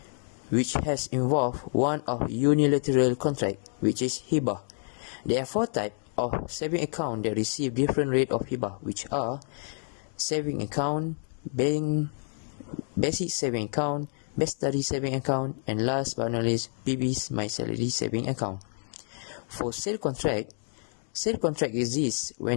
which has involved one of unilateral contract, which is hibah. There are four types of saving account that receive different rate of hibah, which are saving account, basic saving account, best study saving account, and last but not least, PB's My Salary saving account. For sale contract exists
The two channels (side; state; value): right; silent; 59 dB below the other